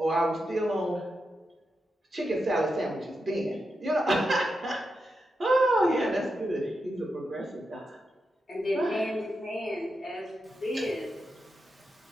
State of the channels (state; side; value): normal; both; correlation 0.87